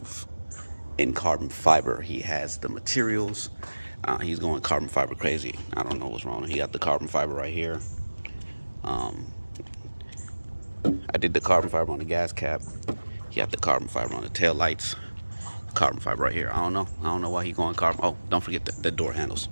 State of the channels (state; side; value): inverted; both; correlation -1.00